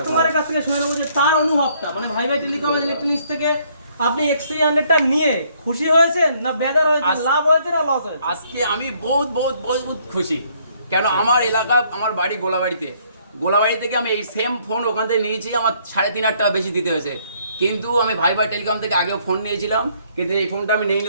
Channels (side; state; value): both; inverted; correlation -0.66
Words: কাছ থেকে শুনে নেবো যে তার অনুভবটা, মানে ভাই টেলিকম ইলেকট্রনিক্স থেকে আপনি X300টা নিয়ে খুশি হয়েছেন না বেজার হয়েছে, লাভ হয়েছে না লস হয়েছে? আজকে আমি বহুত খুশি। কেন, আমার এলাকা, আমার বাড়ি গোলাবাড়ি থেকে আমি এই সেম ফোন ওখান থেকে নিয়েছি, আমার 3,500 টাকা বেশি দিতে হয়েছে। কিন্তু আমি ভাই টেলিকম থেকে আগেও ফোন নিয়েছিলাম, কিন্তু এই ফোনটা আমি নিইনি